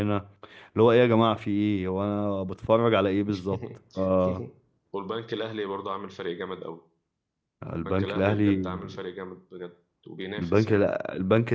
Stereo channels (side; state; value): both; identical; correlation 1.00